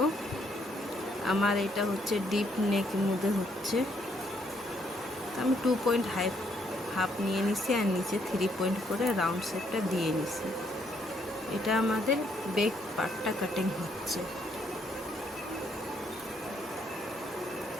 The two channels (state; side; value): normal; both; correlation 0.71